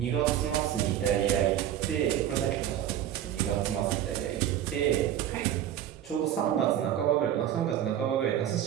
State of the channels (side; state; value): left; quieter; 11.0 dB